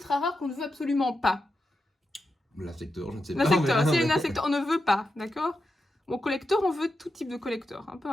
rare qu'on ne veut absolument pas? L'insecteur, je ne sais pas. L'insecteur, s'il y a une insecteur, on ne veut pas, d'accord? Bon, collector, on veut tout type de collector, hein, peu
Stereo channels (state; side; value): normal; both; correlation 0.88